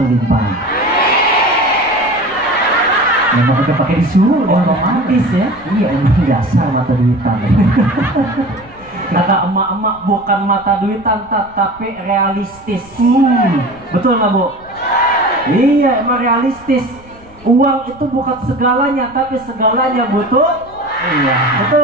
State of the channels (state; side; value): noise; left; rumble, 23 dB below the sound